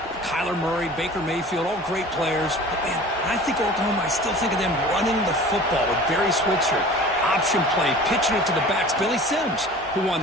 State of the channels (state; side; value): normal; both; correlation 0.42